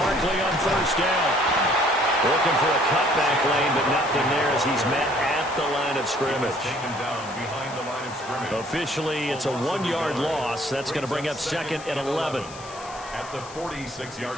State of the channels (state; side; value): noise; left; hiss, 17 dB below the sound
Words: on first down. Looking for a cutback lane, but nothing there as he's met at the line of scrimmage. Officially, it's a 1-yard loss. That's going to bring up 2nd and 11. At the